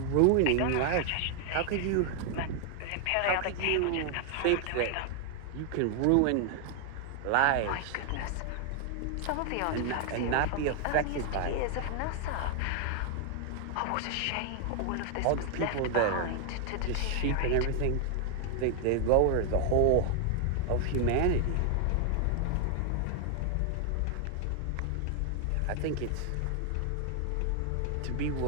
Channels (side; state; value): both; different; correlation 0.00